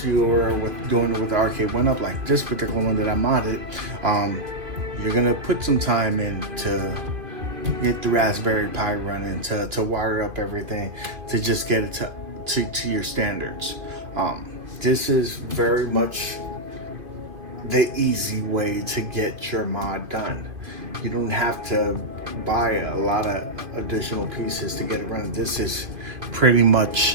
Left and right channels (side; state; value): left; late; 2.5 ms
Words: you were doing it with the arcade one-up, like this particular one that I modded, you're gonna put some time in to get the Raspberry Pi running, to wire up everything, to just get it to your standards. This is very much the easy way to get your mod done. You don't have to buy a lot of additional pieces to get it running. This is pretty